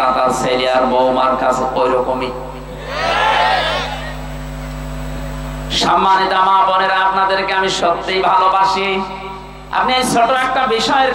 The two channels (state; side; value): identical; both; correlation 1.00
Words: তার ছেলে আর বৌমার কাছে ওই রকমই। সম্মানিত মা বোনেরা, আপনাদেরকে আমি সত্যিই ভালোবাসি। আপনি এই ছোট একটা বিষয়ের